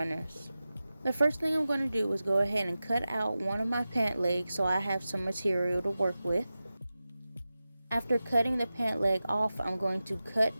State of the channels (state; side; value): inverted; both; correlation -0.94